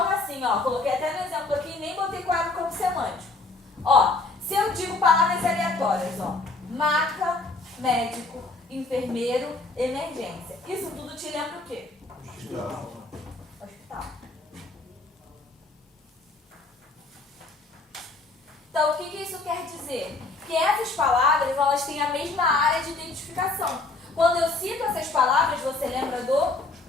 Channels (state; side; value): quieter; right; 3.4 dB